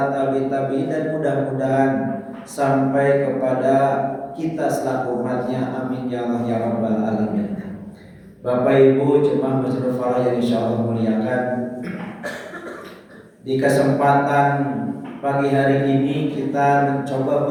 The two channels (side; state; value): both; identical; correlation 1.00